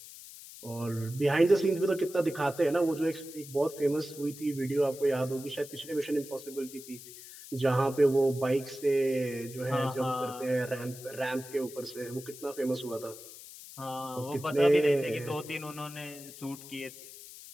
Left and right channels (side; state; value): left; noise; hiss, 15 dB below the sound